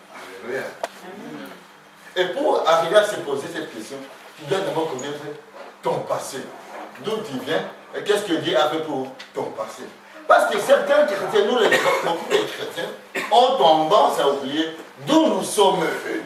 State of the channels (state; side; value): identical; both; correlation 1.00